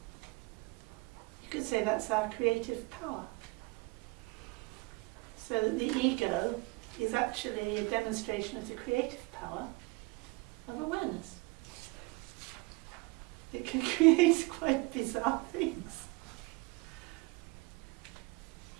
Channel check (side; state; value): left; quieter; 25.0 dB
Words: You could say that's our creative power. So that the ego is actually a demonstration of the creative power of awareness. It can create quite bizarre things.